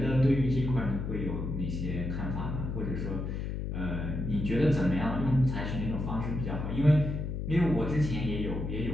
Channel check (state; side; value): noise; left; hum, 3 dB below the sound